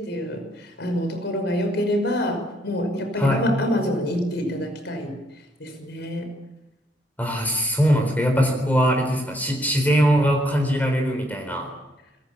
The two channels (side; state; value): both; normal; correlation 0.70